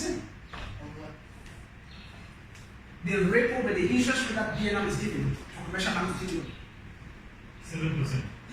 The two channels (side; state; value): both; identical; correlation 1.00